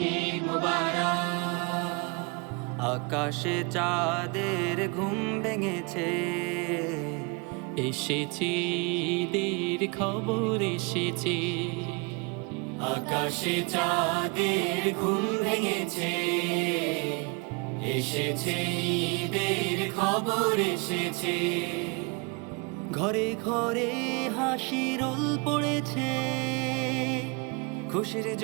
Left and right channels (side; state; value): left; quieter; 31.1 dB